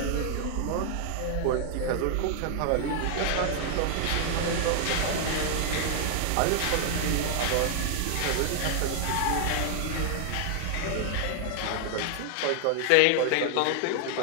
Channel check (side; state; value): both; different; correlation 0.00